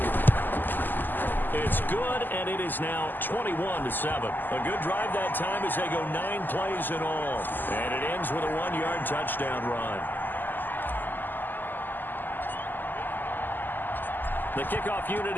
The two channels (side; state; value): right; late; 0.089 ms